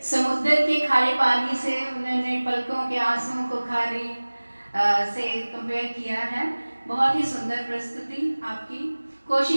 समुद्र के खारे पानी से उन्होंने पलकों के आंसुओं को खारे से कंपेयर किया है। बहुत ही सुंदर प्रस्तुति आपकी।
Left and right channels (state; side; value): inverted; both; correlation -1.00